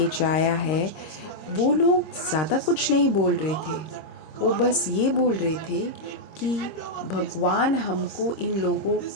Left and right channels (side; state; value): right; late; 26 ms